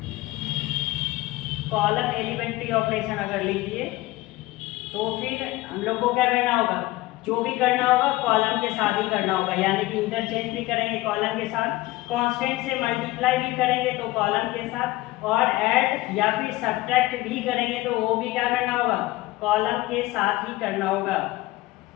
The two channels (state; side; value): quieter; right; 18.7 dB